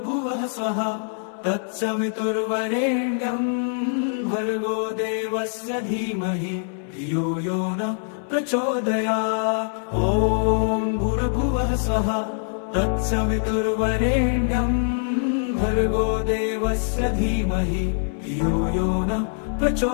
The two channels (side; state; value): right; silent; 59 dB below the other